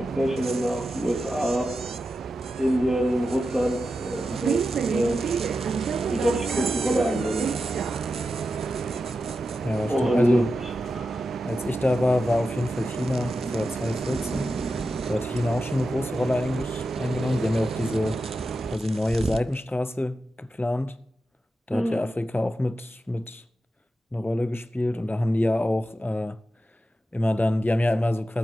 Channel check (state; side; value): normal; both; correlation 0.90